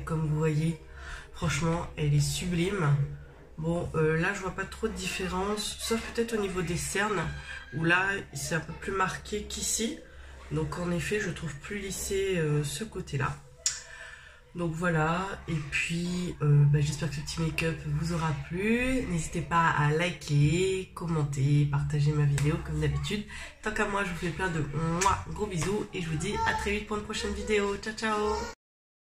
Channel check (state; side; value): identical; both; correlation 1.00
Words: comme vous voyez, franchement, elle est sublime. Bon, là, je vois pas trop de différence, sauf peut-être au niveau des cernes, où là, c'est un peu plus marqué qu'ici. Donc en effet, je trouve plus lissé ce côté-là. Donc voilà, et puis j'espère que ce petit make-up vous aura plu. N'hésitez pas à liker, commenter, partager ma vidéo comme d'habitude. Tant qu'à moi, je vous fais plein de gros bisous et je vous dis à très vite pour une prochaine vidéo. Ciao ciao.